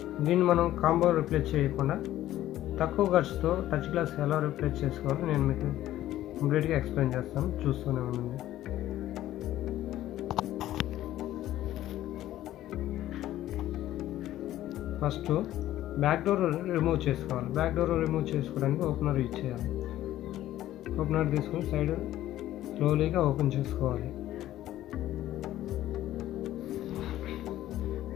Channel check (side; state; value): right; quieter; 13.8 dB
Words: దీన్ని మనం కాంబో రిప్లేస్ చేయకుండా తక్కువ ఖర్చుతో టచ్ గ్లాస్ ఎలా రిప్లేస్ చేసుకోవాలో నేను మీకు కంప్లీట్గా ఎక్స్ప్లెయిన్ చేస్తాను. చూస్తూనే ఉండండి. ఫస్ట్ బ్యాక్ డోర్ రిమూవ్ చేసుకోవాలి. బ్యాక్ డోర్ రిమూవ్ చేసుకోవడానికి ఓపెనర్ యూజ్ చేయాలి. ఓపెనర్ తీసుకొని సైడ్ స్లోలీగా ఓపెన్ చేసుకోవాలి.